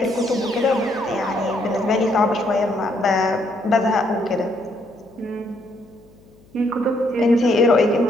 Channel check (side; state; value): left; noise; hum, 28 dB below the sound